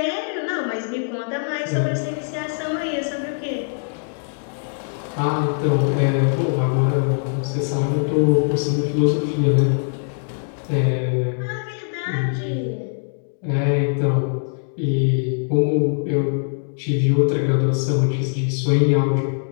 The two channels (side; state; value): right; silent; digital silence